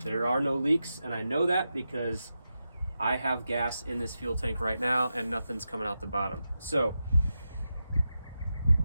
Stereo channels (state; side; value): inverted; both; correlation -0.90